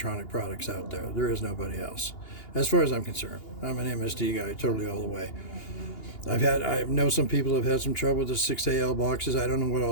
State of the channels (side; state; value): right; late; 2.8 ms